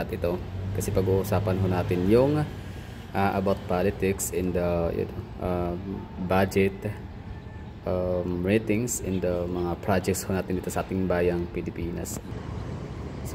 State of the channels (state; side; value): identical; both; correlation 1.00